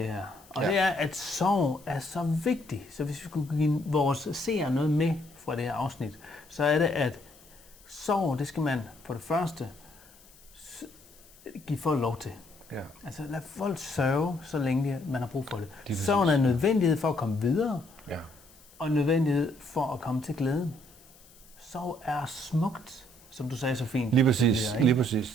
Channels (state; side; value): noise; left; hiss, 26 dB below the sound